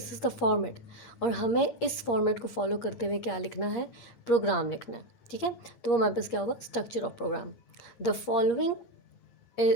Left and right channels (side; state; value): right; late; 8.6 ms